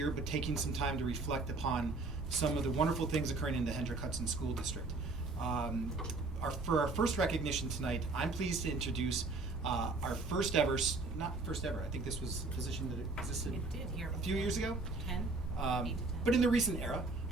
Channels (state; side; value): quieter; left; 3.5 dB